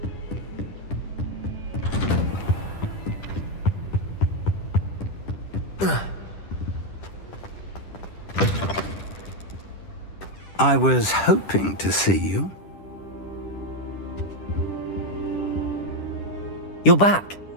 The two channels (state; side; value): late; right; 10 ms